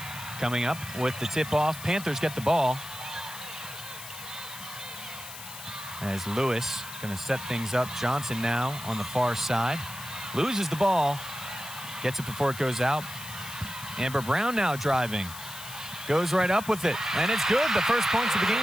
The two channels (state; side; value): noise; left; hiss, 12 dB below the sound